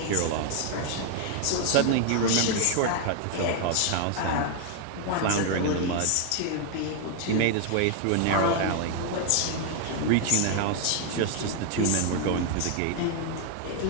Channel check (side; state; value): both; different; correlation 0.00